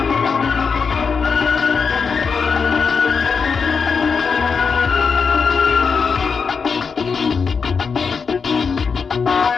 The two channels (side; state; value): right; quieter; 5.6 dB